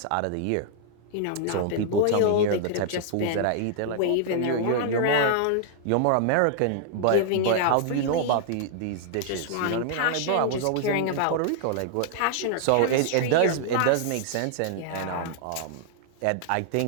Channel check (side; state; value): both; different; correlation -0.01